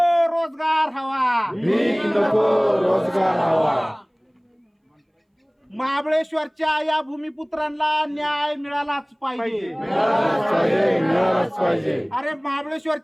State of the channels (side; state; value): both; identical; correlation 1.00